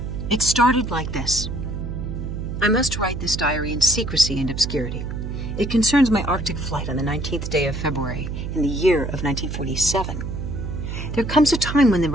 It started like this. I must write this diary in secrecy and obscurity. It concerns my Arctic flight on the 19th day of February in the year of 1947. There comes a time when the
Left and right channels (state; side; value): noise; right; hum, 5 dB below the sound